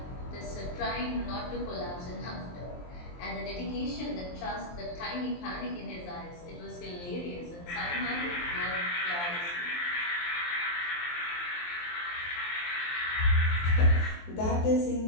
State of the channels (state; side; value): late; right; 23 ms